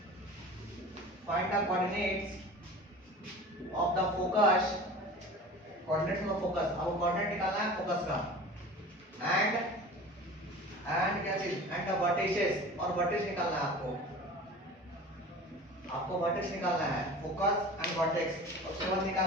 coordinates of the focus, coordinates of focus, अब कोऑर्डिनेट निकालना है फोकस का। एंड क्या चीज, एंड द वर्टिसेस, और वर्टिस निकालना है आपको वर्टिस निकालना है, फोकस एंड वर्टेक्स। उसके बाद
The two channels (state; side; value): normal; both; correlation 0.38